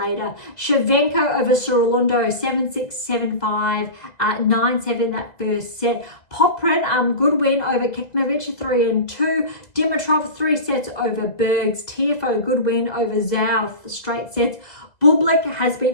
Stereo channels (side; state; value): right; late; 2.0 ms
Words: Shevchenko over Sorondo, 7-6, 7-5, 9-7 that first set. Poprin, good win over Kekmanovic, 3-2. Dimitrov, 3 sets over Bergs. Tiafoe, good win over Zhao, straight sets. Bublik has